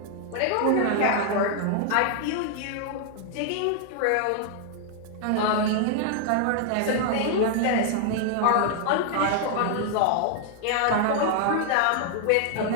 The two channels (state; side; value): different; both; correlation 0.00